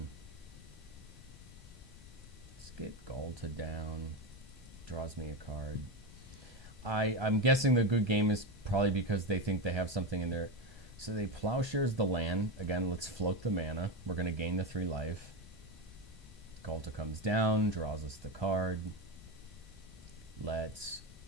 Let's get Galta down. Draws me a card. I'm guessing the good game is probably because they think they have something in there. So they Plowshares the land. Again, let's float the mana. We're going to gain the 3 life. Galta comes down, draws us the card. Let's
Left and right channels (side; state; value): both; normal; correlation 0.16